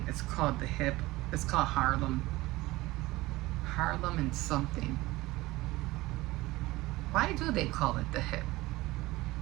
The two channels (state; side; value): quieter; left; 19.3 dB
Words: it's called the Hip. It's called Harlem and something. Why do they call it the Hip?